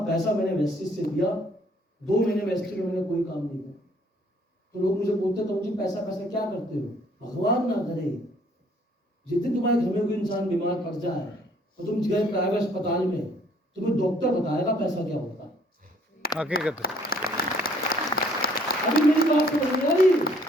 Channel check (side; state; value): both; normal; correlation 0.62